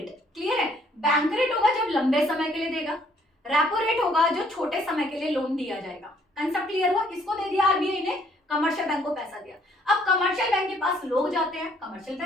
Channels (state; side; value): normal; both; correlation 0.64